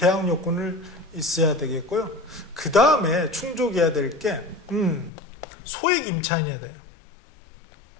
요건을 있어야 되겠고요. 그 다음에 충족해야 될 게 소액 임차인이어야 돼요.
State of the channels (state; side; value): drops out; right; at 5.1 s